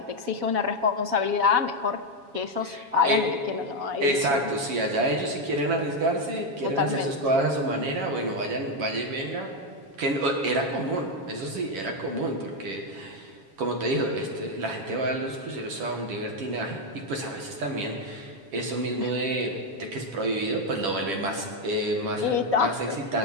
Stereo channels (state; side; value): late; left; 7.3 ms